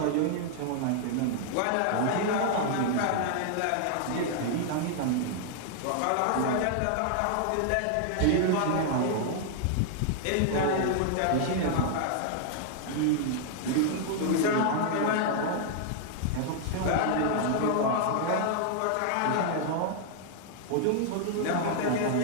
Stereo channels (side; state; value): both; different; correlation 0.00